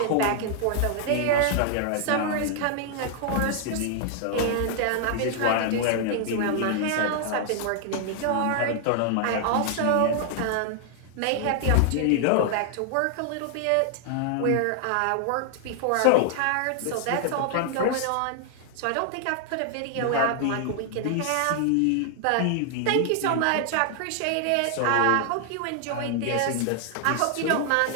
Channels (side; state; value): both; different; correlation 0.00